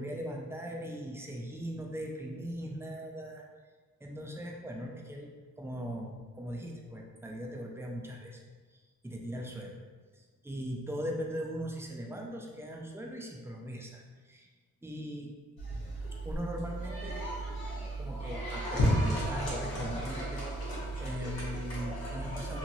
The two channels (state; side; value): normal; both; correlation 0.71